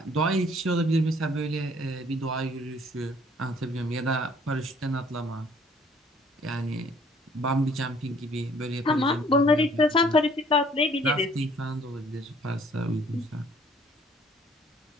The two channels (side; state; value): both; normal; correlation 0.59